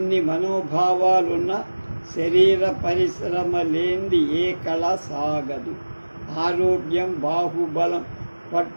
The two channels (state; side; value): inverted; both; correlation -1.00